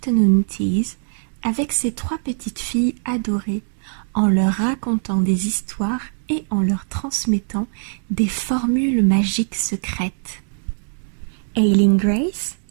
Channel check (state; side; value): silent; left; digital silence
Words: teas avec ses 3 petites filles adorées, en leur racontant des histoires et en leur transmettant des formules magiques secrètes. Aileen Grace,